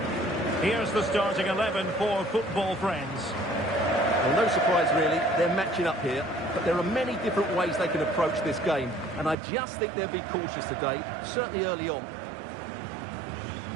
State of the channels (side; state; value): left; drops out; at 9.3 s